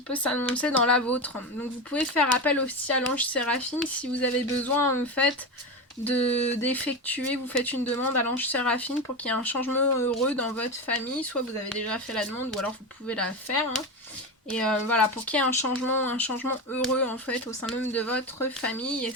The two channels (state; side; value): normal; both; correlation 0.19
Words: peut s'annoncer dans la vôtre. Donc vous pouvez faire appel aussi à l'ange Séraphine si vous avez besoin en fait d'effectuer, vous faites une demande à l'ange Séraphine pour qu'il y ait un changement heureux dans votre famille. Soit vous avez déjà fait la demande ou alors vous pouvez la faire. Hein. Et voilà, pour qu'il y ait un changement heureux en fait au sein même de votre famille. Et